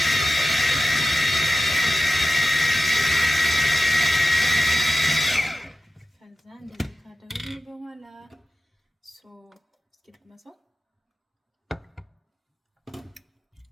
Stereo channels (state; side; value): normal; both; correlation 0.94